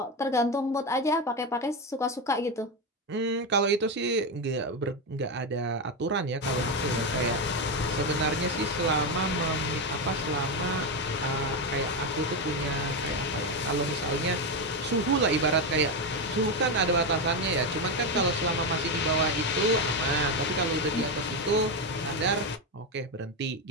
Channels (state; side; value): normal; both; correlation 0.11